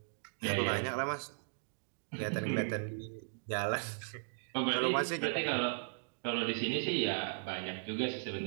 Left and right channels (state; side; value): silent; left; digital silence